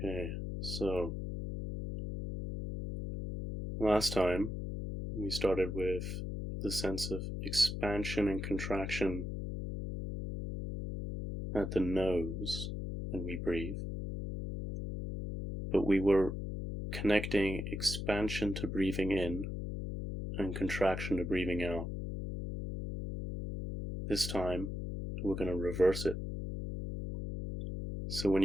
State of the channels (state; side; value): noise; left; hum, 4 dB below the sound